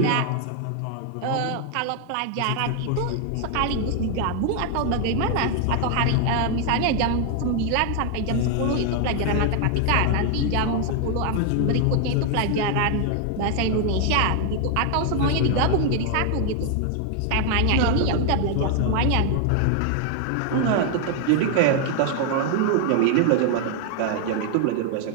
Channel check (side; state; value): both; different; correlation 0.00